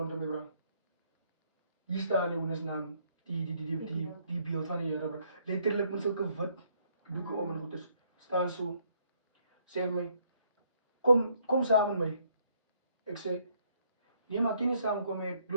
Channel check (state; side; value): inverted; both; correlation -0.69